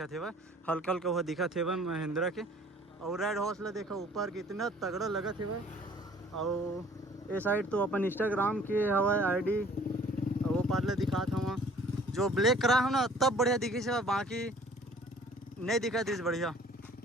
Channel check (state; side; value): normal; both; correlation 0.53